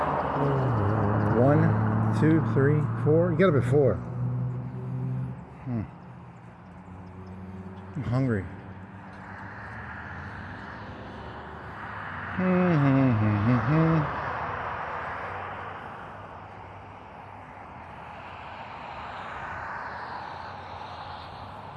1, 2, 3, 4? You got up at 4. I'm hungry.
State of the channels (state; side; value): identical; both; correlation 1.00